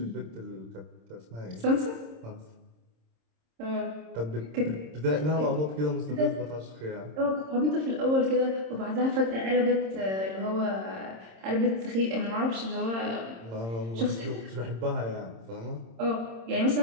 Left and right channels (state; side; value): late; left; 26 ms